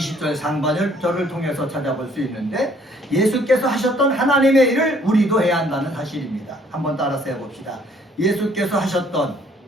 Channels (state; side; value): normal; both; correlation 0.61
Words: 상반절을 통해서 찾아볼 수 있는데, 예수께서 하셨던 하나님의 일을 우리도 해야 한다는 사실입니다. 한번 따라서 해봅시다. 예수께서 하셨던